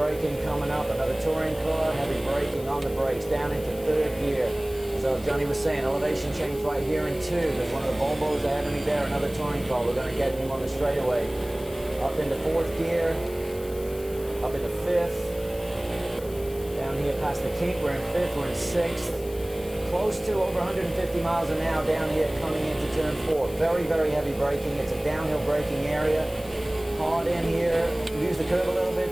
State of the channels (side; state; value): left; noise; hiss, 19 dB below the sound